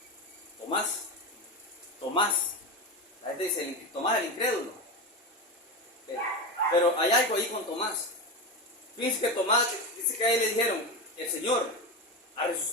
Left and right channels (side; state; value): both; normal; correlation 0.20